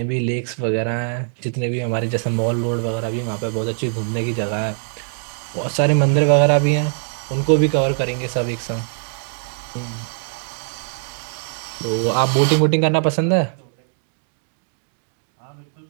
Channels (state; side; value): silent; left; digital silence